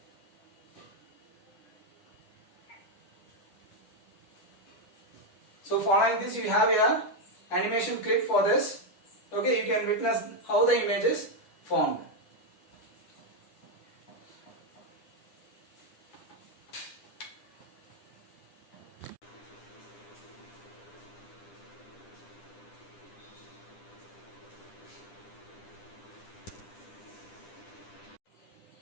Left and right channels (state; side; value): late; right; 10 ms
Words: So following this, you have a animation clip for this. Okay, you can witness how the image is formed.